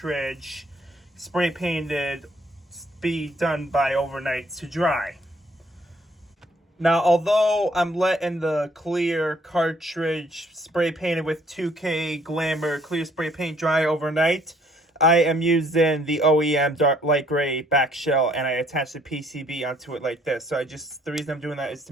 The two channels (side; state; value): both; normal; correlation 0.64